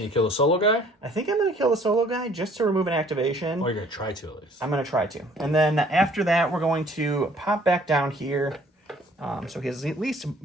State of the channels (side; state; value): both; normal; correlation 0.57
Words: you kill the solo guy? I think I'm going to kill the solo guy just to remove an activation. Or you're going to try to, at least. I'm going to try to. And then after that, we're going to pop back down here. So he's at least